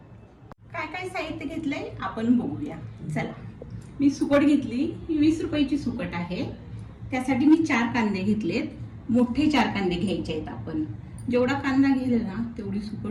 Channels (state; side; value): identical; both; correlation 1.00